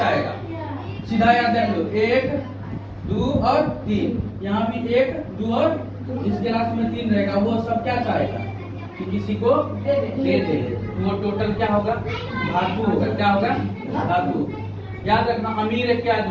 सीधा याद देख लो, 1, 2 और 3, यहाँ भी 1, 2 और इस गिलास में 3 रहेगा। वो सब क्या चाहेगा कि किसी को दे दे, वो टोटल क्या होगा, धातु होगा। क्या होगा, धातु। याद रखना, अमीर एक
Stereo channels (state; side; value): identical; both; correlation 1.00